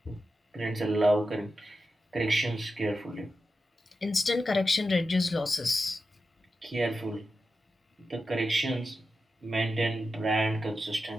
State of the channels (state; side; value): normal; both; correlation 0.90